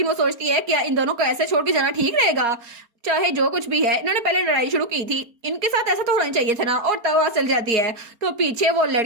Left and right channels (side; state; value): left; late; 4.3 ms